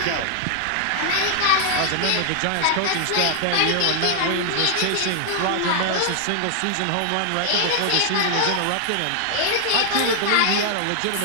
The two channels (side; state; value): both; different; correlation 0.00